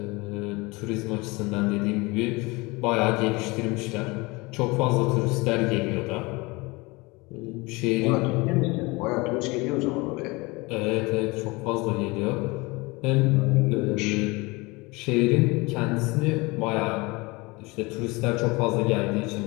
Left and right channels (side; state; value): right; quieter; 24.6 dB